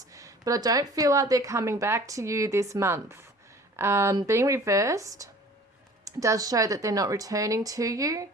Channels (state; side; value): normal; both; correlation 0.47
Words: But I don't feel like they're coming back to you this month. Being reversed does show that they're not returning to you.